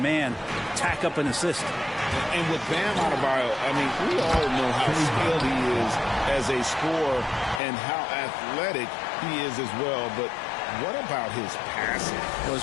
man. Tack up an assist. And with Bam Adebayo, I mean, we all know how skilled he is as a scorer and how athletic he is as well. But What about his passing? Well,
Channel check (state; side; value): drops out; right; at 7.6 s